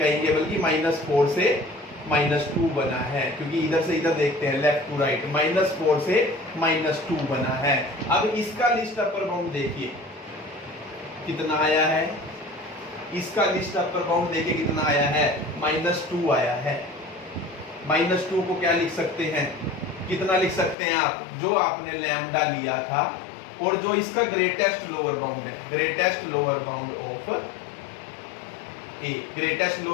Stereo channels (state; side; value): drops out; right; at 20.8 s